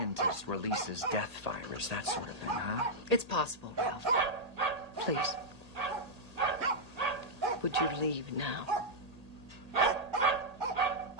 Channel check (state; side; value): late; left; 1.8 ms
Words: releases death virus, that sort of thing, huh? It's possible, Ralph. Please. Would you leave now?